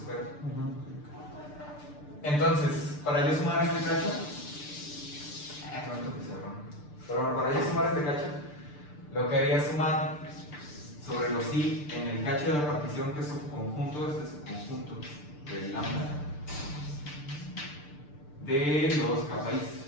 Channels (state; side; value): late; right; 6.7 ms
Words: Entonces, para yo sumar este cacho, pero bueno, para yo sumar este cacho, lo que haría es sumar sobre los i en el cacho de la partición que es subconjunto, este subconjunto del lambda, de los kappa i.